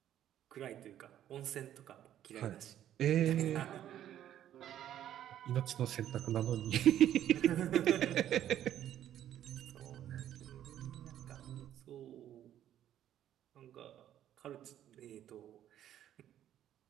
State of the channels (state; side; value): quieter; left; 11.3 dB